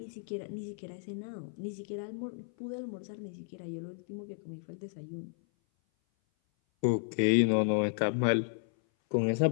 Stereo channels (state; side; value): silent; right; 56 dB below the other